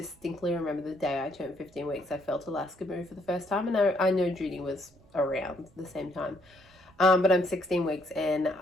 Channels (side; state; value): right; noise; rumble, 28 dB below the sound